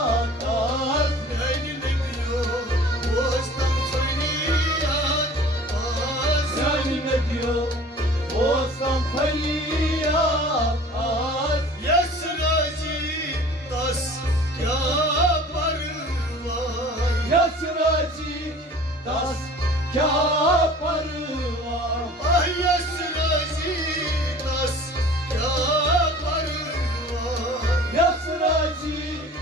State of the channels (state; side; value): normal; both; correlation 0.45